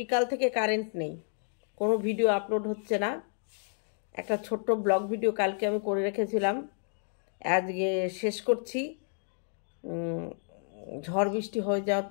থেকে কারেন্ট নেই, কোনো ভিডিও আপলোড হচ্ছে না। একটা ছোট্ট ব্লগ ভিডিও কালকে আমি করে রেখেছিলাম, আজকে শেষ করছি। ঝড় বৃষ্টি হয়ে যাওয়ার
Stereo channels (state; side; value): silent; right; 57 dB below the other